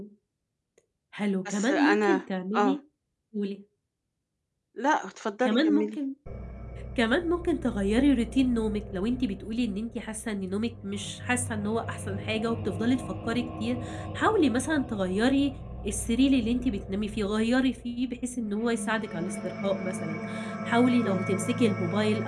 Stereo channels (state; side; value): identical; both; correlation 1.00